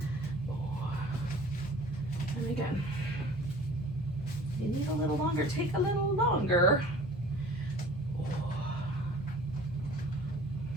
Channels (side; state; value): both; normal; correlation 0.46